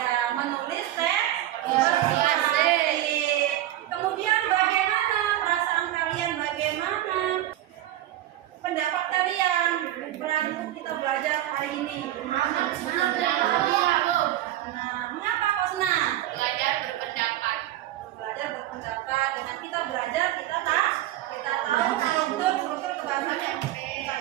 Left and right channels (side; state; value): left; quieter; 13.7 dB